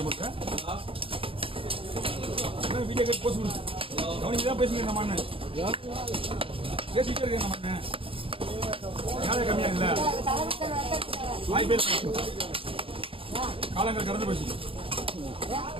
வீடியோ கேட்டு போச்சு கவனிக்கு தான் பேசுங்க. நம்ம அண்ணன் பேசிக்கிட்டே இருக்கேன். நம்ம அண்ணன் யாரை கம்மியா இல்ல வாய் பேச காலங்கள் கடந்து போச்சு.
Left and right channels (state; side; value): late; left; 0.26 ms